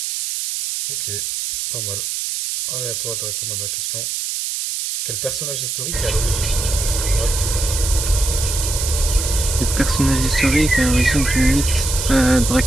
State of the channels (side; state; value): right; noise; hiss, 3 dB below the sound